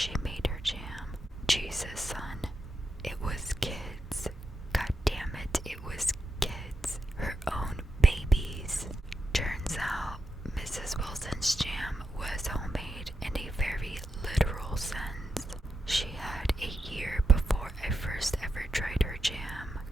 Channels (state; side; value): normal; both; correlation 0.87